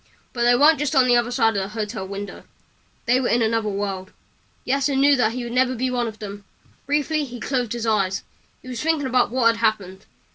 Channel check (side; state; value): both; identical; correlation 1.00